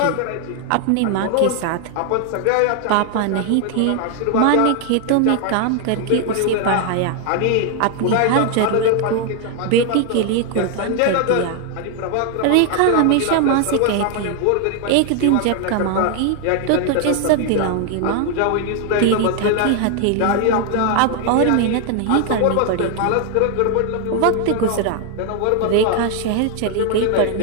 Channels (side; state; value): both; different; correlation 0.00